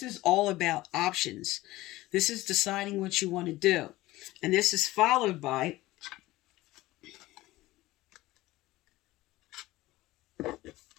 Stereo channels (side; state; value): right; quieter; 18.0 dB